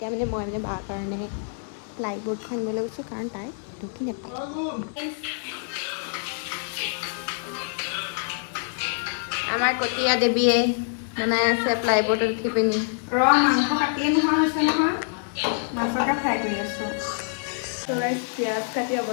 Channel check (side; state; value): right; silent; 55 dB below the other